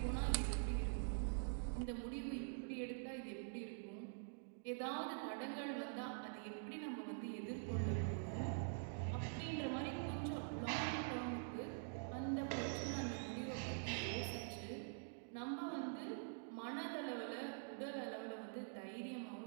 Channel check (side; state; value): left; silent; digital silence